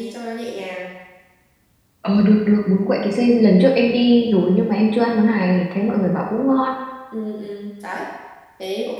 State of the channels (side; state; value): both; identical; correlation 1.00